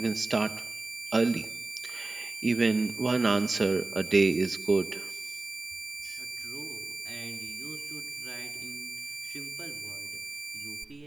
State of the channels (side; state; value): left; quieter; 3.2 dB